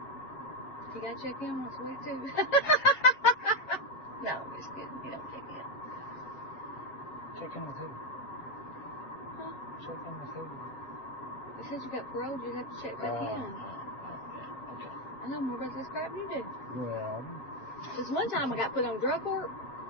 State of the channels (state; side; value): late; right; 7.3 ms